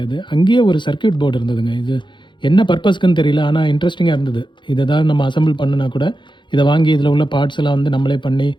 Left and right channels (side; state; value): right; late; 0.23 ms